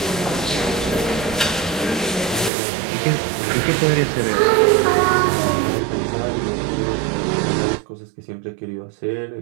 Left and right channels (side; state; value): left; drops out; at 2.5 s